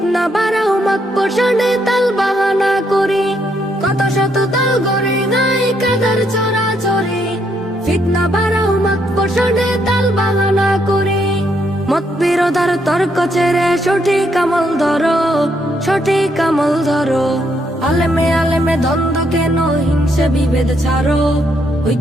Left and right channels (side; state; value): both; normal; correlation 0.75